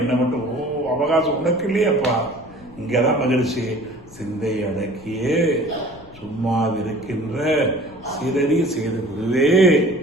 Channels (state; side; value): noise; left; rumble, 22 dB below the sound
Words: மட்டும் அவகாசம் உனக்கு இல்லையாப்பா. இங்கதான் மகிழ்ச்சி. சிந்தை அடக்கியே சும்மாவிருக்கின்ற சிறறி செய்து விடுவே.